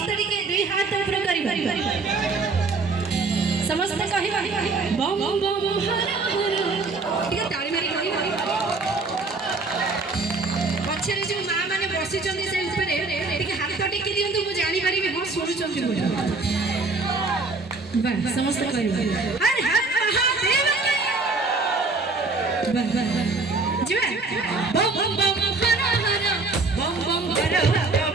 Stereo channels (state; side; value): quieter; left; 3.7 dB